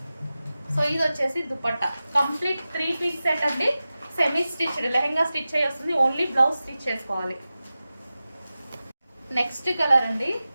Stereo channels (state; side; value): inverted; both; correlation -0.95